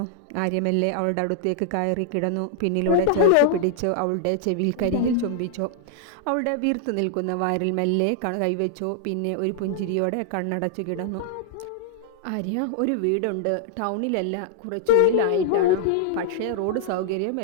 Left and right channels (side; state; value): both; different; correlation -0.01